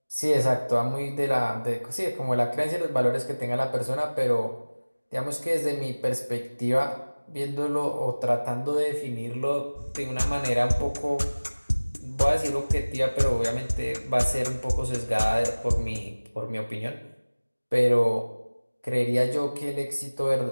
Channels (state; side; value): inverted; both; correlation -1.00